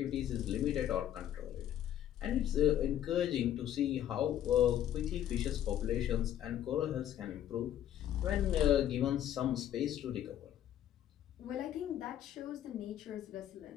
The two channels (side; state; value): right; quieter; 11.3 dB